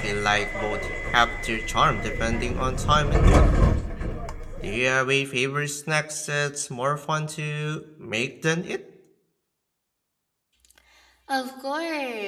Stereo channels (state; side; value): identical; both; correlation 1.00